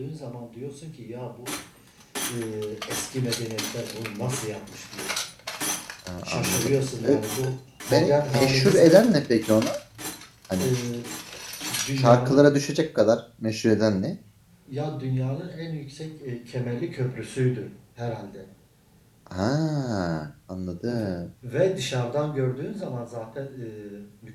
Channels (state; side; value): identical; both; correlation 1.00